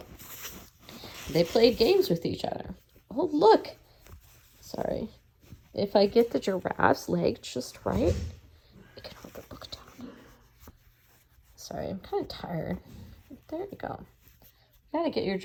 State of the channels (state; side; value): identical; both; correlation 1.00